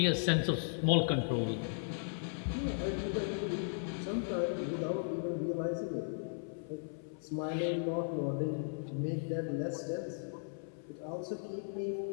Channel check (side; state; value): right; silent; 53 dB below the other